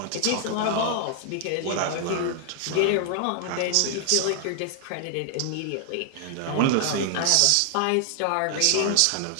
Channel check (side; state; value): both; different; correlation 0.00